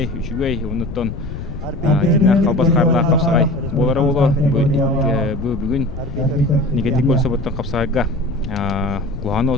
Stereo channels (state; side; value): noise; left; rumble, 9 dB below the sound